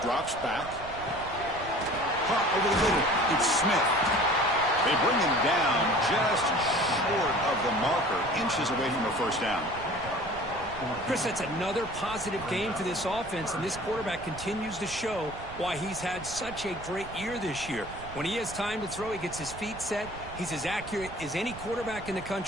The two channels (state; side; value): noise; right; rumble, 14 dB below the sound